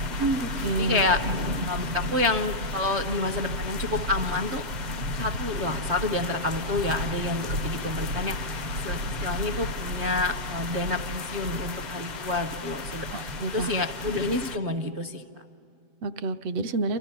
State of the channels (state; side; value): late; left; 7.6 ms